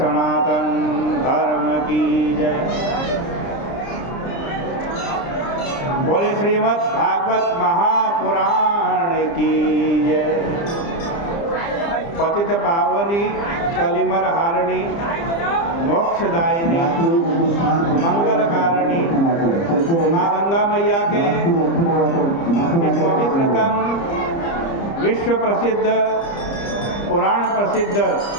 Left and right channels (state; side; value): late; right; 30 ms